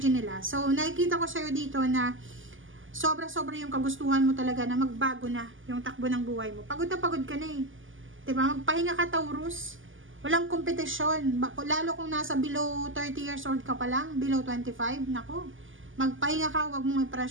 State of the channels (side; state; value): left; late; 0.58 ms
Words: nila. So, nakikita ko sa'yo dito na sobra-sobra yung kagustuhan mo talaga na magbago na yung takbo ng buhay mo. Pagod ka na eh. Diba? Magpahinga ka, Taurus. Walang kompetisyon. Lalo kung nasa below 30 years old ka pa lang, below 25, nako. Magpahinga ka, wag mong